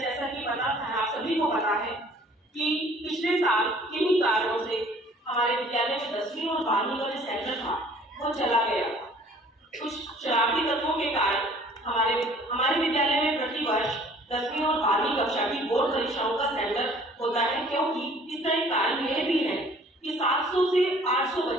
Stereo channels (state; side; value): normal; both; correlation 0.53